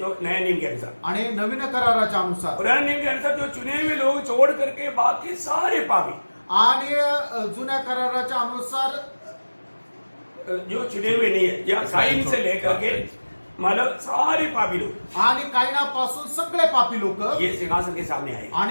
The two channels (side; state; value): both; inverted; correlation -1.00